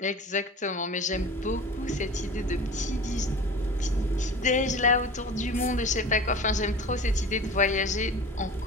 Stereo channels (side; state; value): both; normal; correlation 0.37